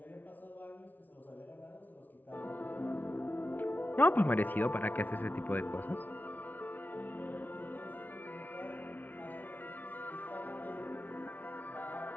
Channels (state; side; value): late; right; 0.085 ms